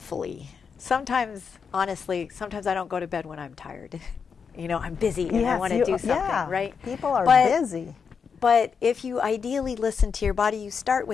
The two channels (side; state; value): right; quieter; 6.1 dB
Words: Sometimes, honestly, sometimes I don't go to bed when I'm tired. I'm busy and I want to do something, right? People are busy. But if you ideally listen to your body, you start